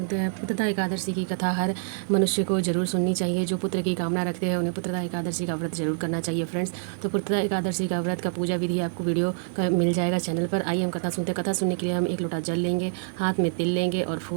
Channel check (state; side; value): silent; left; digital silence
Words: हैं। पुत्रदा एकादशी की कथा हर मनुष्य को जरूर सुननी चाहिए। जो पुत्र की कामना रखते हैं उन्हें पुत्रदा एकादशी का व्रत जरूर करना चाहिए फ्रेंड्स। तो पुत्रदा एकादशी का व्रत का पूजा विधि आपको वीडियो का मिल जाएगा चैनल पर। आइए हम कथा सुनते हैं। कथा सुनने के लिए हम 1 लोटा जल लेंगे, हाथ में तिल लेंगे और